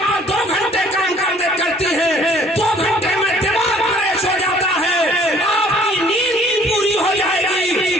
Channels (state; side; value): normal; both; correlation 0.57